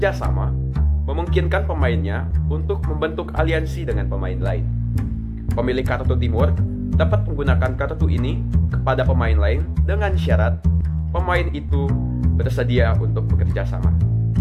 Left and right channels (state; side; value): identical; both; correlation 1.00